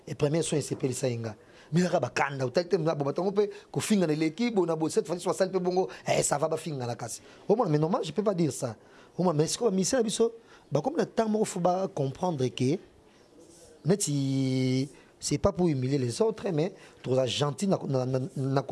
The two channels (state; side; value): identical; both; correlation 1.00